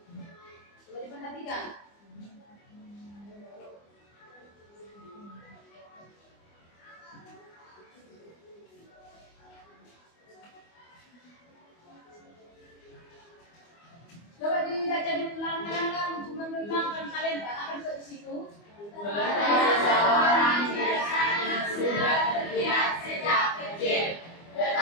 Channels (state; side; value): late; right; 24 ms